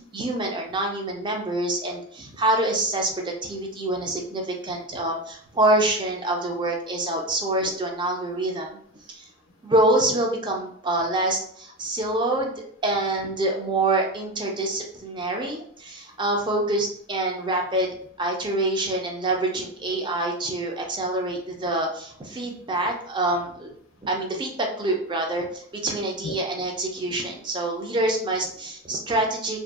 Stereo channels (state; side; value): normal; both; correlation 0.19